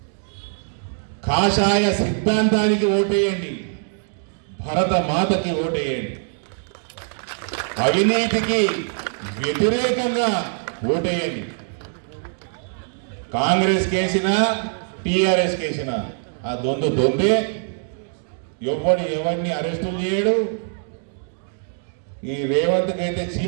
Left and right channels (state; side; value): silent; left; digital silence